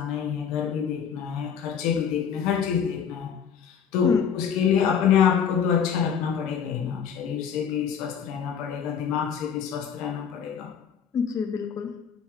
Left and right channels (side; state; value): right; quieter; 7.6 dB